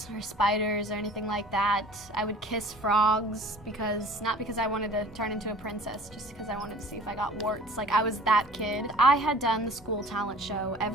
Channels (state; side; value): normal; both; correlation 0.47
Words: or spiders or anything like that. I would kiss frogs not because I wanted to turn into a princess, just because I wanted to see if I got warts. Like, I was that kid. I had done the school talent show